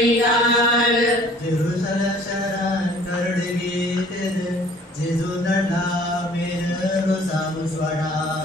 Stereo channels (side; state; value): both; normal; correlation 0.52